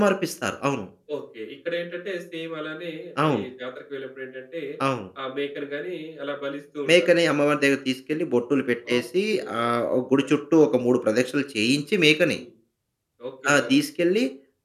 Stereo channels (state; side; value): identical; both; correlation 1.00